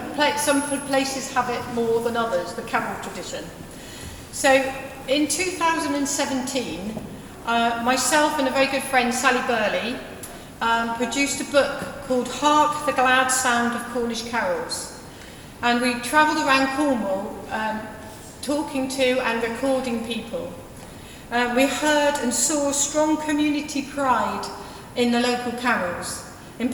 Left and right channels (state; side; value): identical; both; correlation 1.00